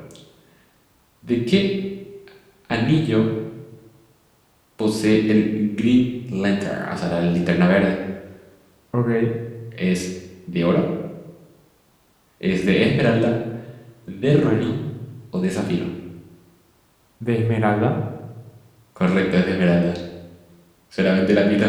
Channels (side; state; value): both; identical; correlation 1.00